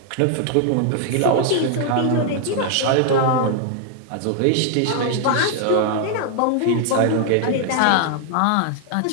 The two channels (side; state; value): both; different; correlation 0.00